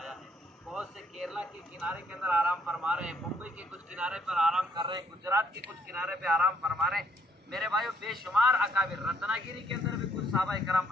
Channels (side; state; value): both; normal; correlation 0.68